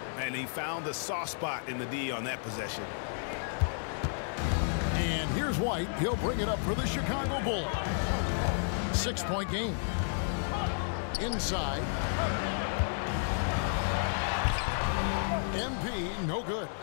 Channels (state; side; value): silent; right; digital silence